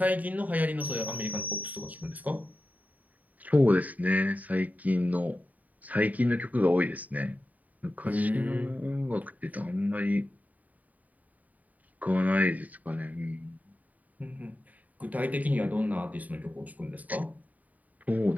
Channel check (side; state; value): left; late; 0.074 ms